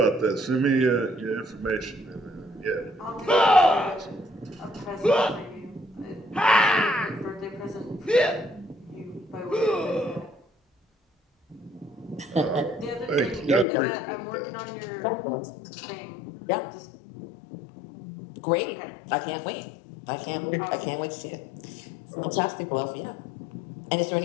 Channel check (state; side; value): drops out; right; at 13.7 s